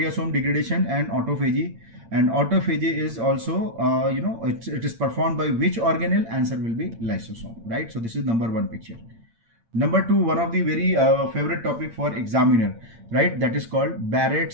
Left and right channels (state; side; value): late; left; 8.8 ms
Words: degradation and autophagy. And autophagy is also, it is performed by which organelle? Answer will be lysosome, right? So this is number one picture. Number two, one of the very favorite topic for examiner, right? That is called